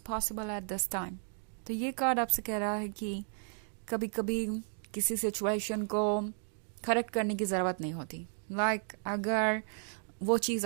possible at this time. तो ये कार्ड आपसे कह रहा है कि कभी कभी किसी सिचुएशन को करेक्ट करने की ज़रूरत नहीं होती। लाइक अगर वो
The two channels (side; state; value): left; silent; 55 dB below the other